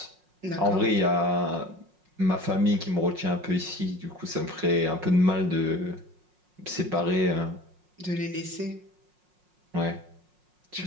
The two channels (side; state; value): left; late; 5.5 ms